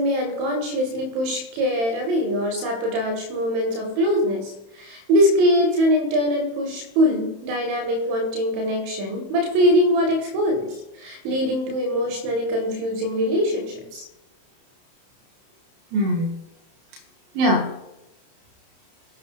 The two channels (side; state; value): left; late; 31 ms